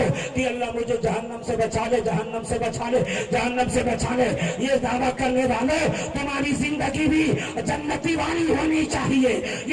کہ اللہ مجھے جہنم سے بچا لے، جہنم سے بچا لے، جہنم سے بچا لے، یہ دعویٰ کرنے والے تمہاری زندگی بھی جنتی والی ہونی چاہیے۔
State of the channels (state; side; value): identical; both; correlation 1.00